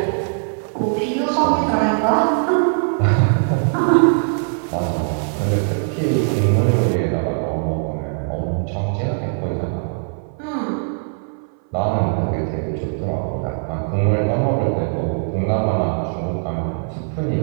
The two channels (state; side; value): silent; left; 58 dB below the other